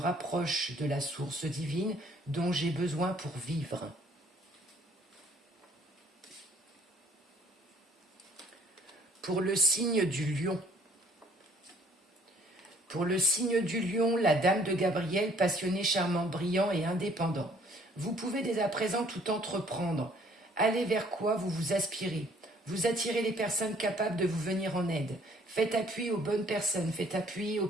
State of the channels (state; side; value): normal; both; correlation 0.60